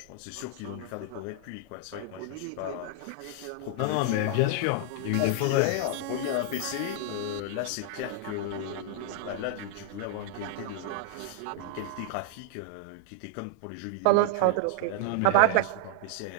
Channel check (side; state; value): both; different; correlation -0.01